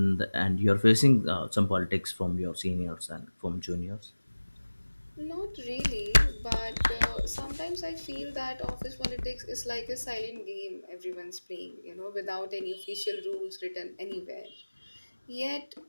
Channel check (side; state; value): both; inverted; correlation -1.00